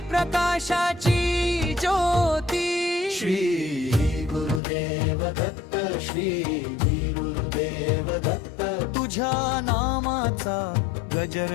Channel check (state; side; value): drops out; right; at 4.6 s